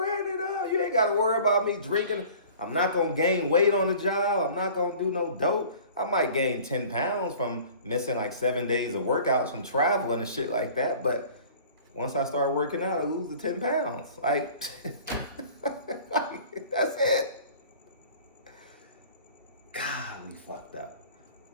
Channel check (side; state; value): both; inverted; correlation -0.46